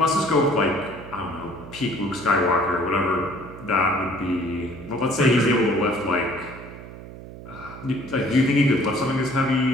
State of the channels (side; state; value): right; noise; hum, 14 dB below the sound